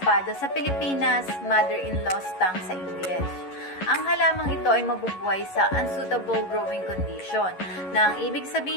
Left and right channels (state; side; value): late; right; 11 ms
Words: sa Pilipinas, mother-in-law stang sa English. Ang halamang ito ay mabubuhay sa unsuitable growing condition, na ang ibig